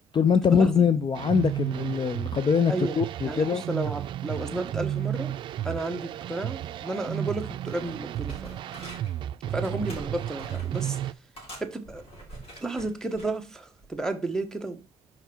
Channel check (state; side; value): normal; both; correlation 0.65